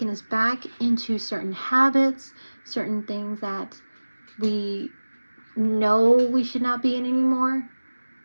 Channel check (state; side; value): inverted; both; correlation -1.00